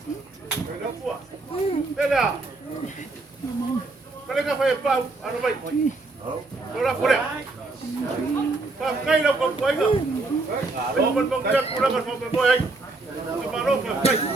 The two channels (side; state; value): left; quieter; 3.4 dB